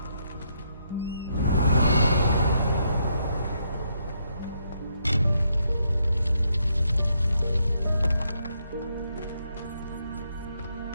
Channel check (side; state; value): both; inverted; correlation -0.76